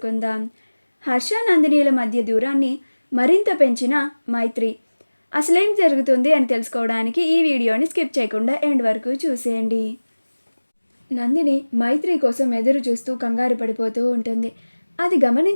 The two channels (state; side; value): inverted; both; correlation -1.00